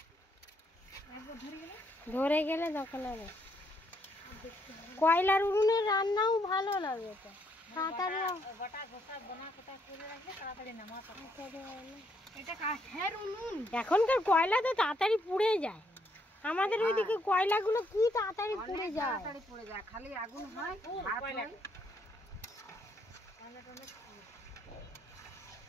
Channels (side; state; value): both; normal; correlation 0.73